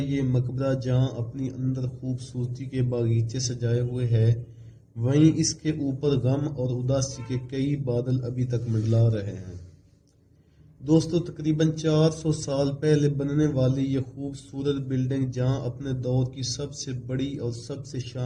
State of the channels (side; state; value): both; identical; correlation 1.00